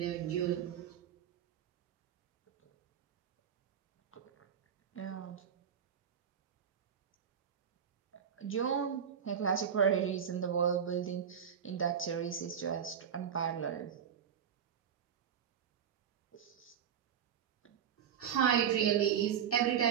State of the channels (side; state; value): left; quieter; 8.3 dB